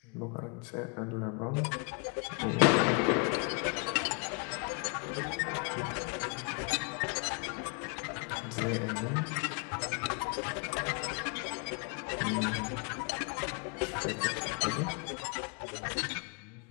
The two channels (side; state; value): right; quieter; 35.1 dB